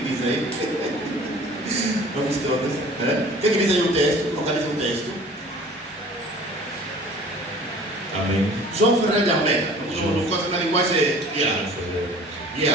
aí? Vamos todos. O que diz aí o texto? Localiza o texto. Amém. João Ferreira de Almeida. No caso da linguagem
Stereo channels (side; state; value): both; normal; correlation 0.47